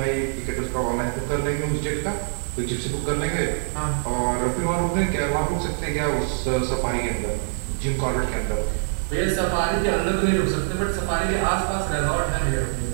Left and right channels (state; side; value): silent; left; 62 dB below the other